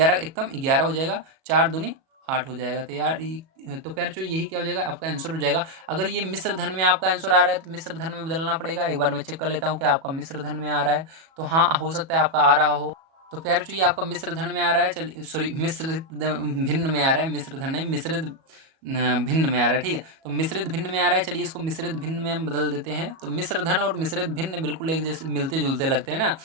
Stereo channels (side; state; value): left; late; 37 ms